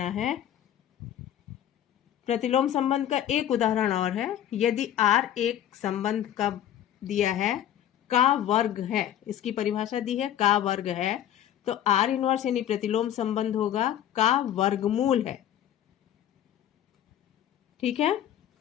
है। प्रतिलोम संबंध का एक उदाहरण और है। यदि R एक संबंध का दिया है का वर्ग है, इसकी परिभाषा दी है का वर्ग है, तो R इनवर्स यानी प्रतिलोम संबंध होगा का वर्गमूल है। ठीक है,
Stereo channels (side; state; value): right; quieter; 11.1 dB